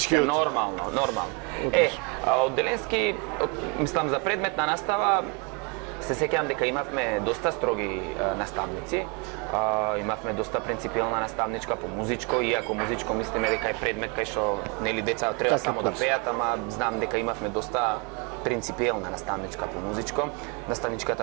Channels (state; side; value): quieter; left; 32.5 dB